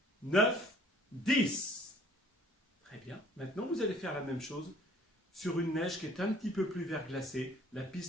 9, 10. Très bien. Maintenant, vous allez faire la même chose sur une neige qui est un petit peu plus verglacée. La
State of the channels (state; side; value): normal; both; correlation 0.55